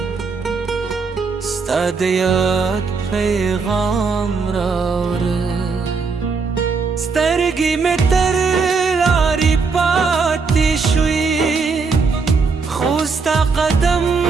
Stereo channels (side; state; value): left; quieter; 4.8 dB